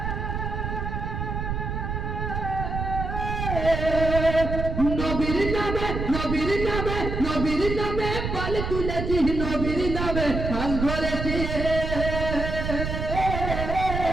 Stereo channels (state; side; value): noise; right; rumble, 3 dB below the sound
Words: নবীর নামে নবীর নামে নবীর নামে পাল তুলেছি, নবীর নামে হাল ধরেছি,